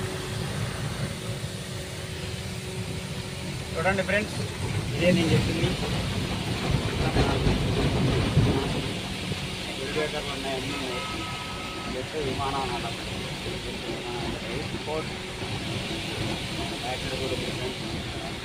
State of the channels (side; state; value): both; identical; correlation 1.00